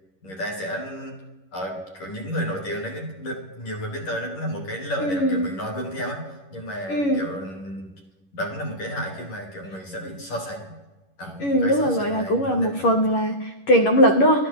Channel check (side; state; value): right; late; 11 ms